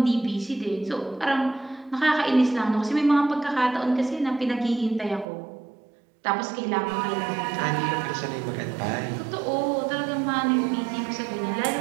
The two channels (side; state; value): left; drops out; at 5.2 s